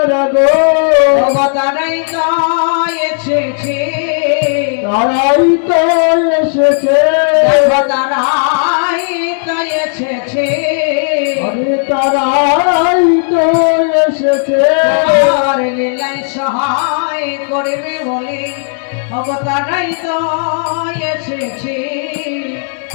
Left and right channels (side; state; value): right; silent; digital silence